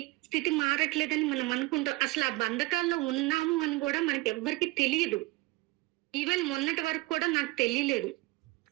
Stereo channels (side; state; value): left; quieter; 22.0 dB